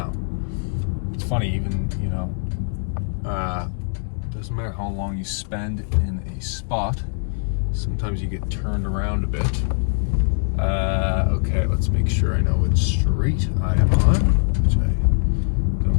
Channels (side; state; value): right; silent; 64 dB below the other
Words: It's funny, even doesn't matter how long you spend in a spot, sometimes you get turned around a bit. Okay, let's make sure I know what street I am on, which I